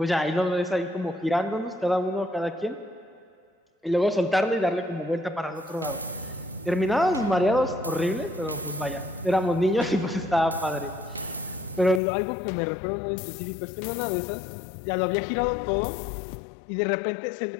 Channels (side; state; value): right; drops out; at 12.0 s